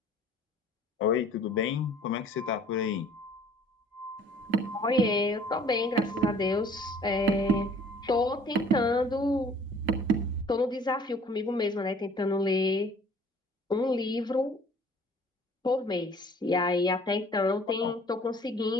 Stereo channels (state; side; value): normal; both; correlation 0.53